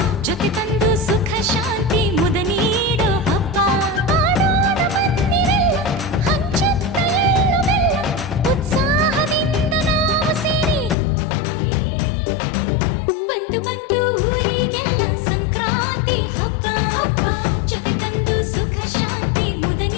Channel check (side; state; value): right; drops out; at 11.0 s